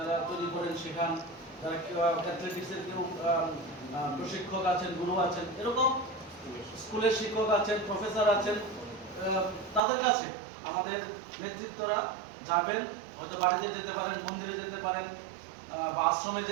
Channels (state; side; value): drops out; left; at 9.8 s